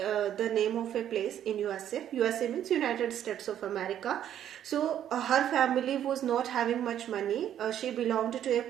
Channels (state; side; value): quieter; left; 10.5 dB